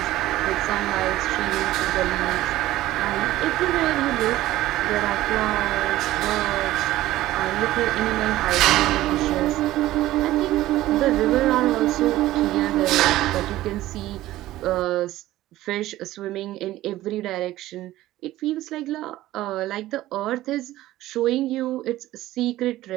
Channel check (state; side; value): quieter; left; 15.6 dB